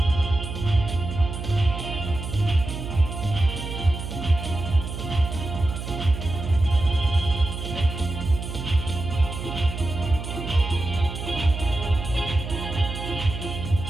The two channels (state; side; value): noise; right; hum, 7 dB below the sound